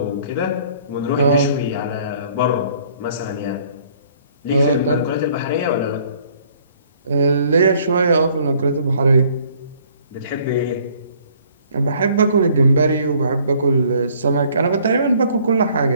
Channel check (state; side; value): inverted; both; correlation -0.59